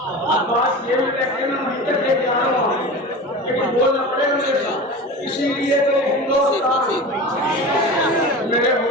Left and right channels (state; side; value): normal; both; correlation 0.31